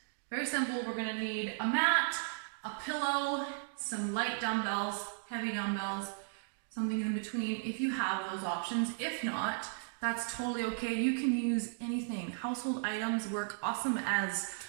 very simple, we're going to need a mat, a pillow, some light dumbbells, heavy dumbbells, something in between if you have those options. If not, that's totally okay. You can use anything. Household items work awesome as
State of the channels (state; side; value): silent; left; digital silence